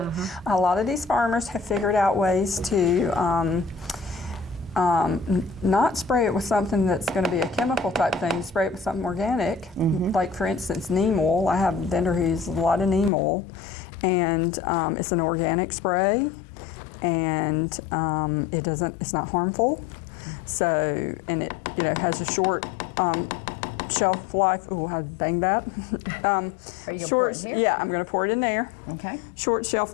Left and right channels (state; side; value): drops out; right; at 13.1 s